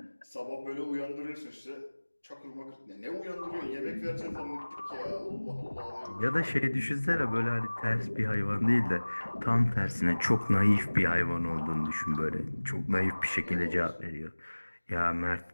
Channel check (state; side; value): inverted; both; correlation -1.00